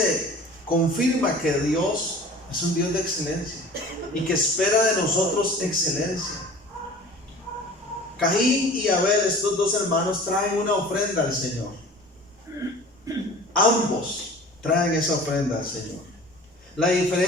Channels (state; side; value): normal; both; correlation 0.42